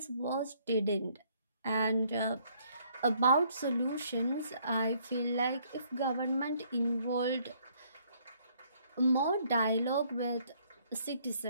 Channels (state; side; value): inverted; both; correlation -0.65